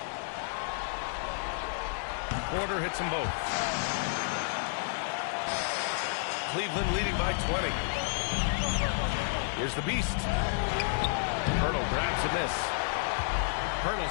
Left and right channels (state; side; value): silent; right; digital silence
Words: Porter hits them both. Cleveland leading by 20. Here's the Beast. Hurdle grabs a miss.